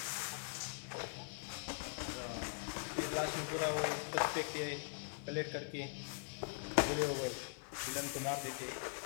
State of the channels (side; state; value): right; quieter; 34.0 dB